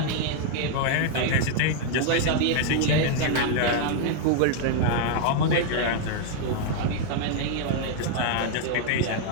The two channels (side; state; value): both; different; correlation 0.00